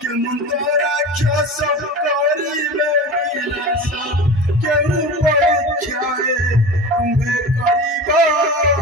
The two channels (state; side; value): normal; both; correlation 0.32